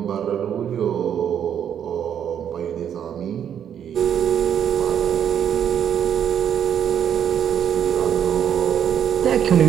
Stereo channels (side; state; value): left; quieter; 9.0 dB